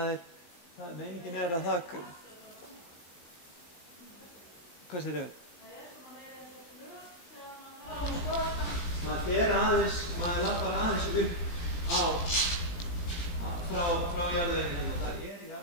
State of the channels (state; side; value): late; right; 18 ms